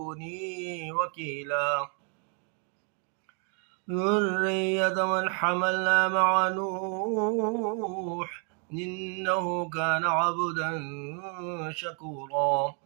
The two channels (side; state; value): left; quieter; 38.9 dB